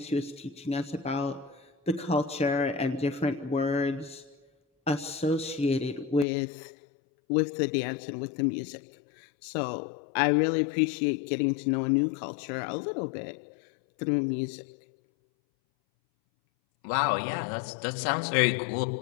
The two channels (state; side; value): drops out; right; at 6.2 s